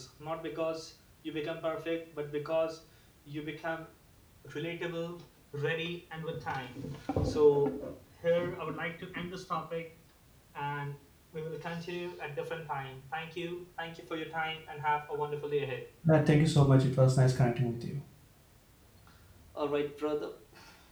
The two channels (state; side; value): identical; both; correlation 1.00